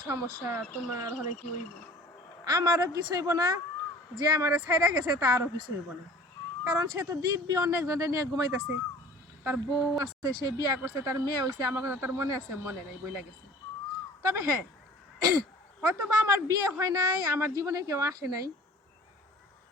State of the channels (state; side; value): normal; both; correlation 0.47